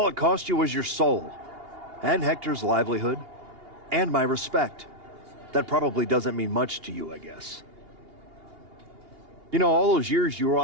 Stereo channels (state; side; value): late; left; 2.8 ms